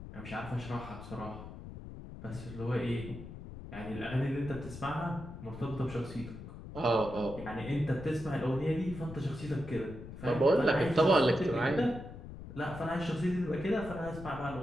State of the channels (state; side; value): noise; left; rumble, 12 dB below the sound